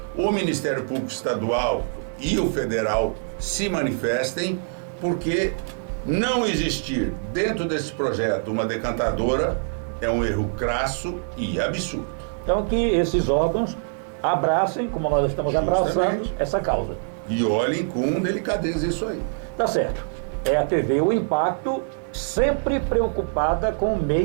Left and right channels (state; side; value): silent; left; digital silence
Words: o Ministério Público Estadual e o Federal se manifestem, porque não existir dentro desse projeto uma decantadora é um erro crasso e absurdo. Então que esses órgãos abracem, como nós estamos abraçando, essa causa. E olhem com delicadeza isso aí. Tá certo. É a TV O Impacto, sempre preocupada com o